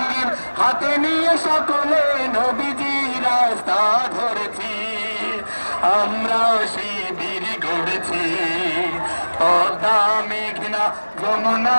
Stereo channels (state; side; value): inverted; both; correlation -1.00